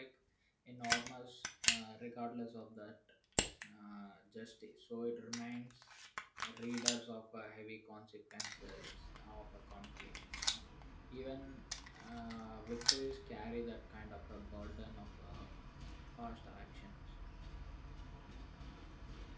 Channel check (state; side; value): identical; both; correlation 1.00